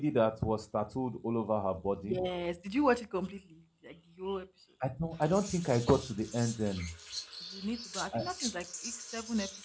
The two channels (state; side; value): identical; both; correlation 1.00